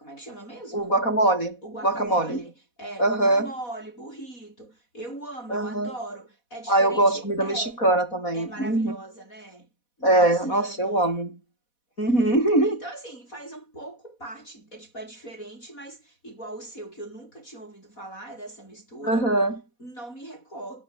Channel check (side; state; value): right; late; 4.1 ms